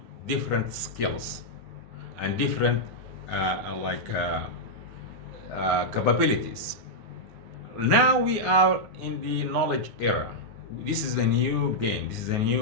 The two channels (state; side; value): late; left; 9.6 ms